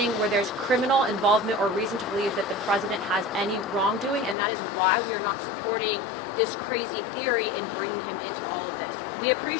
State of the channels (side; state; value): right; drops out; at 4.4 s